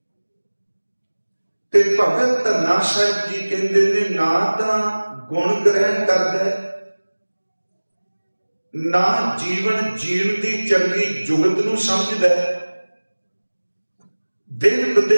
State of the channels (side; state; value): both; inverted; correlation -1.00